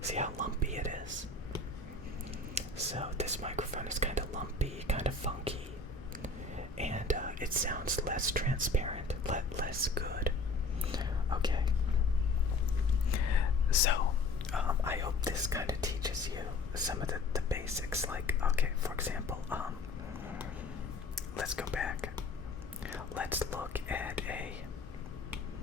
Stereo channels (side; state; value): right; quieter; 3.4 dB